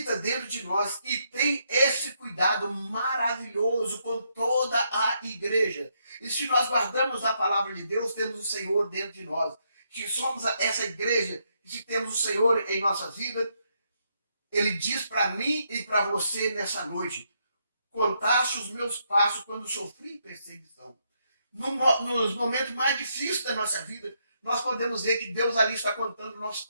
dentro de nós e tem esse cuidado maravilhoso com toda a igreja. E se nós guardamos a palavra de Deus, temos o Senhor dentro de nós. Se somos essa igreja, se temos o Senhor em nossa vida, Ele diz para mim e para você nessa noite: contaste os meus passos quando sofri perseguição. Nos momentos mais difíceis da nossa vida, nós podemos ver que Deus ali está contando o nosso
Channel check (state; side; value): inverted; both; correlation -0.77